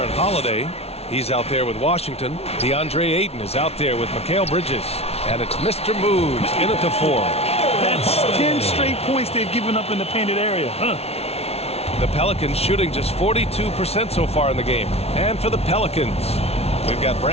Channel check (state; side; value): late; right; 0.30 ms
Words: Holiday. He's out there with Washington. DeAndre Ayton is out there with Mikal Bridges. And it's Mr. Moves in at the 4. That's 10 straight points they've given up in the painted area. The Pelicans shooting just 42% so far in the game. And for the Pelicans, we've got